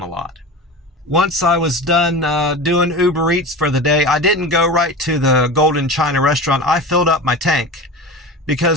a lot. Once I was done doing Uber Eats for the day, I didn't go right to the Golden China restaurant. I filled up my tank,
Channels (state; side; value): normal; both; correlation 0.30